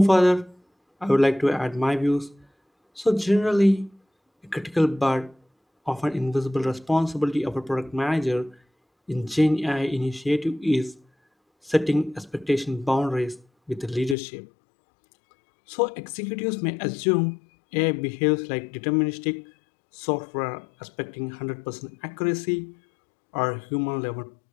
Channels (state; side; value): drops out; right; at 14.2 s